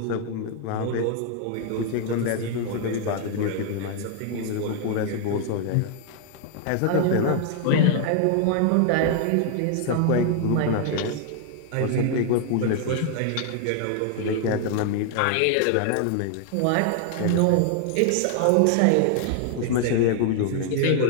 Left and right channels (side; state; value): both; different; correlation 0.00